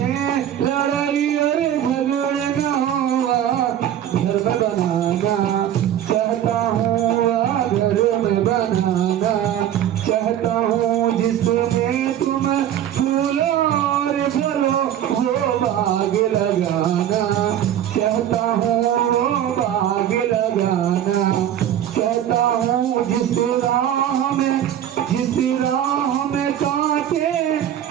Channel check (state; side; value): quieter; left; 10.7 dB